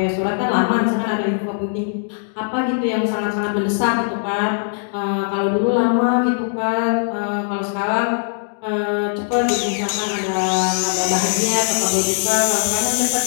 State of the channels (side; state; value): right; silent; digital silence